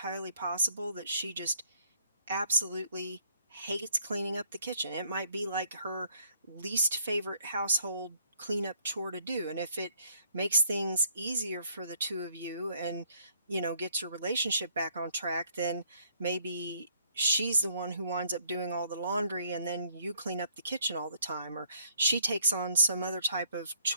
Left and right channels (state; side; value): inverted; both; correlation -0.68